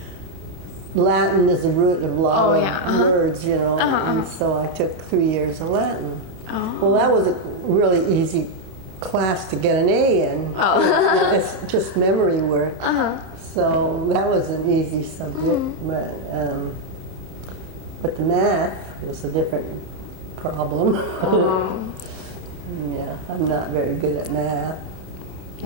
Latin is the root of a lot of words, you know, and so I took 3 years of Latin. Oh. Well, that was a really easy class to get an A in. Oh. It's just memory work. So that was an easy subject, but the math was a different problem. Yeah, I'm not very good at math.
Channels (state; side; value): late; left; 28 ms